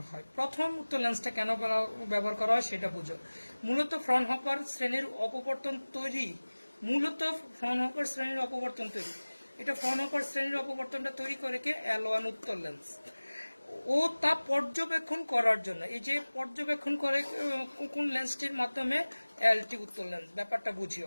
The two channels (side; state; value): both; inverted; correlation -1.00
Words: হয়। প্রথম উত্তল লেন্সটা কেন ব্যবহার করা হয় সেটা বুঝো। মূলত ফ্রনহোফার শ্রেণীর অপবর্তন তৈরি, এটা ফ্রনহোফার শ্রেণীর অপবর্তনটা তৈরি করে কে L1 উত্তল লেন্স, ও তা পর্যবেক্ষণ করার জন্য। এই যে পর্যবেক্ষণ করে কোন লেন্সটির মাধ্যমে, L2 উত্তল লেন্স। ব্যাপারটা বুঝিও।